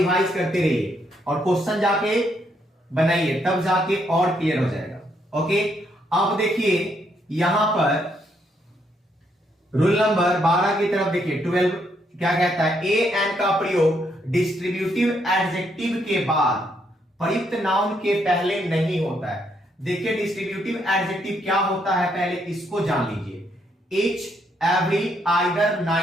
करते रहिए और क्वेश्चन जाके बनाइए, तब जाके और क्लियर हो जाएगा। ओके, अब देखिए यहां पर रूल नंबर 12 की तरफ देखिए, 12 क्या कहता है, ए एन का प्रयोग डिस्ट्रीब्यूटिव एडजेक्टिव के बाद प्रयुक्त नाउन के पहले नहीं होता है। देखिए डिस्ट्रीब्यूटिव एडजेक्टिव क्या होता है, पहले इसको जान लीजिए। ईच, एवरी, आइदर,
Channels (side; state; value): both; normal; correlation 0.74